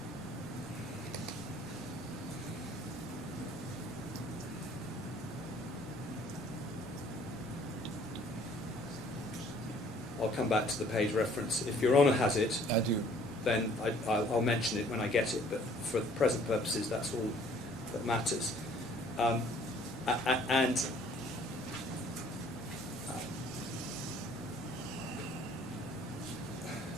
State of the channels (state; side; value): normal; both; correlation 0.57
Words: I'll come back to the page reference. If Your Honour has it, I do. then I'll mention it when I get it, but for present purposes, that's all that matters.